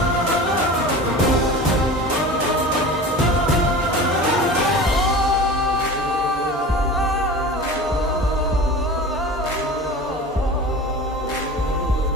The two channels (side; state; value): both; normal; correlation 0.35